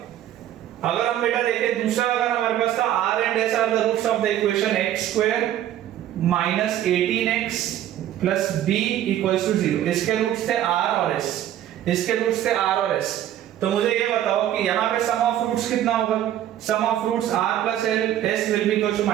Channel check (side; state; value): left; quieter; 11.8 dB